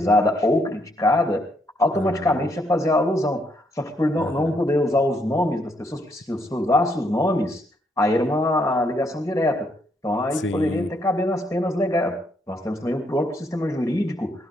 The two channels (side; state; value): both; normal; correlation 0.74